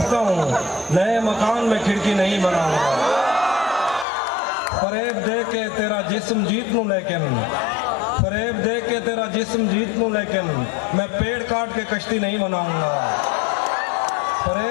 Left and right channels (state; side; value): drops out; right; at 4.0 s